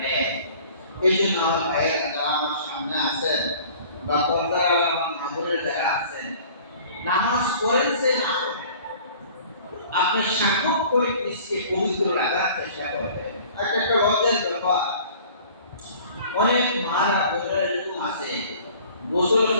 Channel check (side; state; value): both; inverted; correlation -0.49